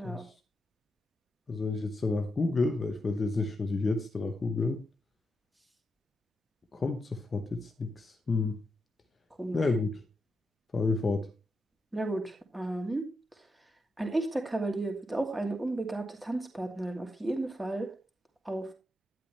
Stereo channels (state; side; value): normal; both; correlation 0.85